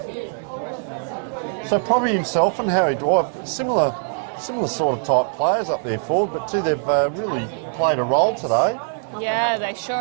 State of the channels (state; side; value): silent; left; digital silence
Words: So probably himself and Harry Dwight, similar sort of type players up there forward, but they've really played a role today. Yeah, they